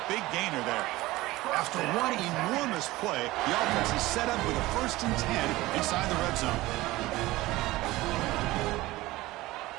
big gainer there. After one enormous play, the offense is set up with a 1st and 10 inside the red zone.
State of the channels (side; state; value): left; quieter; 18.6 dB